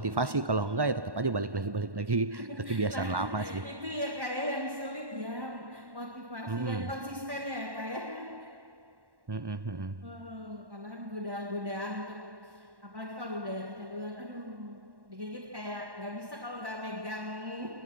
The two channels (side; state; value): left; late; 1.1 ms